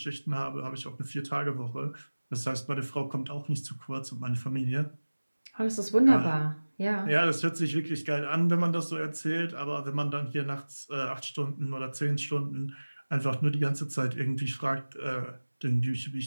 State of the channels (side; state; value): both; inverted; correlation -1.00